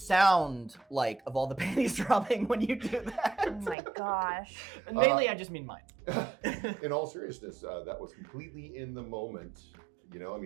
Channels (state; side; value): drops out; left; at 3.8 s